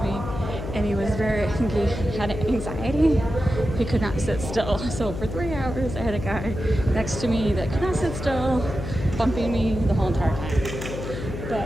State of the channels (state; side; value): noise; left; hum, 7 dB below the sound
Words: me. And he was I think he had anxiety. He could not sit still. So for 3 hours, I had a guy next to me that could not sit still, bumping me the whole entire time.